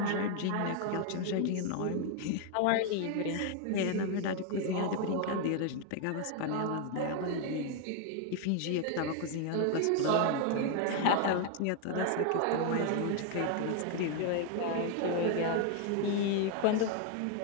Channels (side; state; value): both; different; correlation 0.01